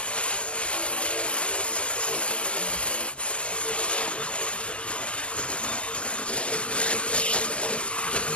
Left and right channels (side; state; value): right; late; 0.054 ms